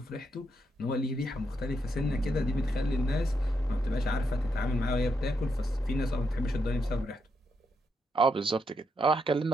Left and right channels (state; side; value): normal; both; correlation 0.80